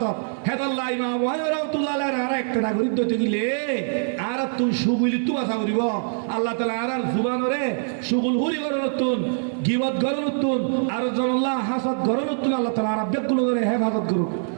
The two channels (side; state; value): left; silent; digital silence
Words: হেদাল্লাহ ইমাম আবু হানিফা রাহমাতুল্লাহ আর একটা করি তো দিলে আর তুই সুগুলি তু আশা করিব আল্লাহ তাআলা আর জুবানরে সুগুল হুরি করনতুন গিবত করনতুন আর জনাল্লাহ হাসাদ করনতুন আল্লাহ তাআলা আর বেগুলো করে হেফাজত করুক